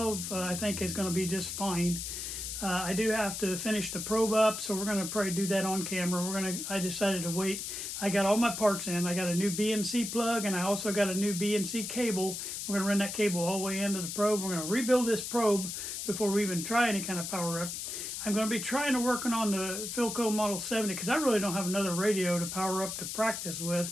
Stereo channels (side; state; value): left; noise; hiss, 5 dB below the sound